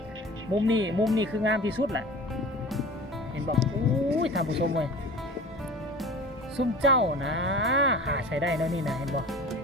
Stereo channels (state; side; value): normal; both; correlation 0.39